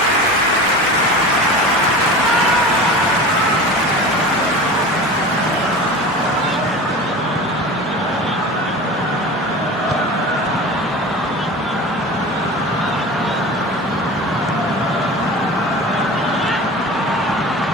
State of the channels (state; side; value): normal; both; correlation 0.34